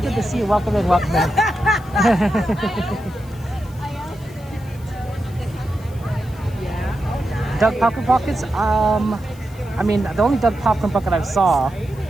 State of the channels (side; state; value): left; noise; hiss, 25 dB below the sound